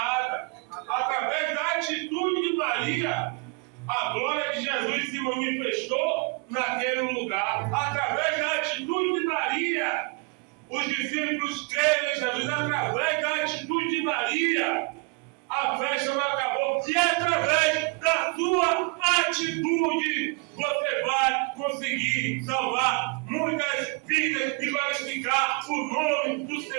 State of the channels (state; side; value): quieter; left; 31.6 dB